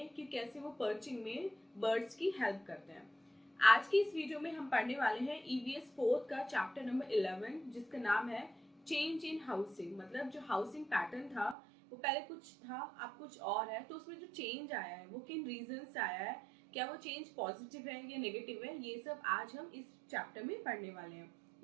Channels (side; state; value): left; drops out; at 11.6 s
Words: कि कैसे वो पर्चिंग में बर्ड्स की हेल्प करते हैं। आज की इस वीडियो में हम पढ़ने वाले हैं ईवीएस फोर्थ का चैप्टर नंबर 11, जिसका नाम है चेंज इन हाउसिंग। मतलब जो हाउसिंग पैटर्न था वो पहले कुछ था, अब कुछ और है, तो उसमें जो चेंज आया है वो किन रीजन से आया है, क्या वो चेंज पॉजिटिव है या नेगेटिव है, ये सब आज हम इस चैप्टर में पढ़ने वाले हैं।